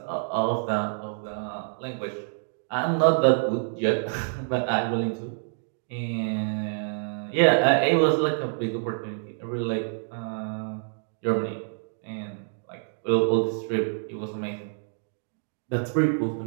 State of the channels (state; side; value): silent; left; 60 dB below the other